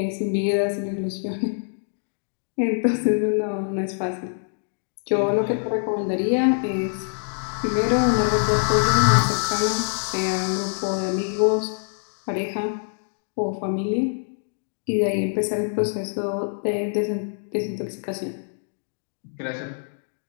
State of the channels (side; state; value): right; silent; digital silence